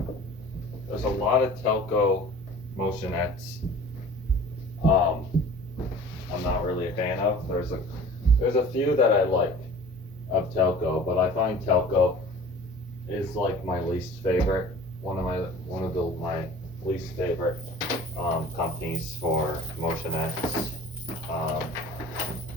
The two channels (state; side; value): normal; both; correlation 0.44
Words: There's a lot of Telco motionettes I'm not really a fan of. There's a few that I like of Telco, but I find Telco is like my least favorite. One of my least favorite companies for motionettes.